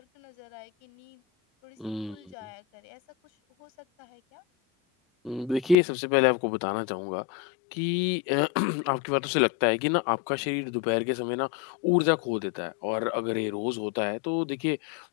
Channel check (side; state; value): right; drops out; at 5.8 s